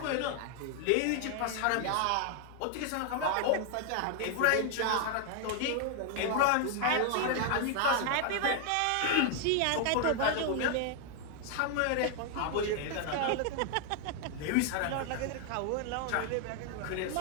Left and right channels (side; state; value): both; different; correlation 0.00